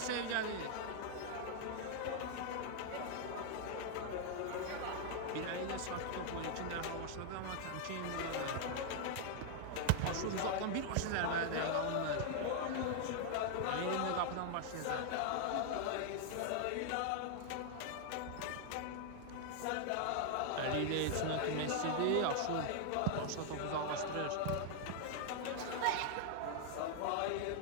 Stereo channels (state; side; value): different; both; correlation 0.00